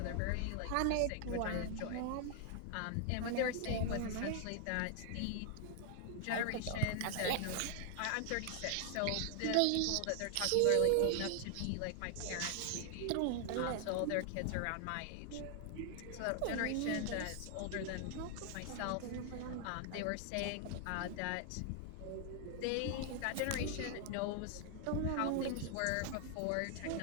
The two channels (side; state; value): both; different; correlation 0.00